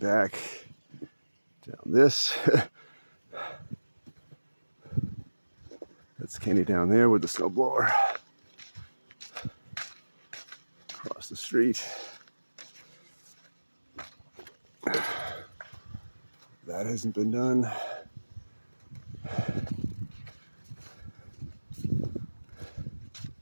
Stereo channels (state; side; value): inverted; both; correlation -1.00